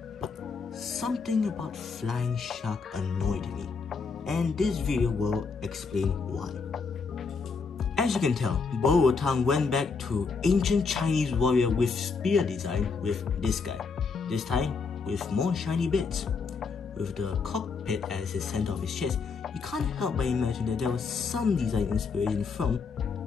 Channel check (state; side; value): quieter; right; 4.9 dB